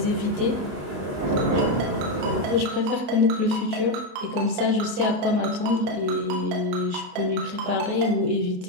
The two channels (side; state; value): left; late; 28 ms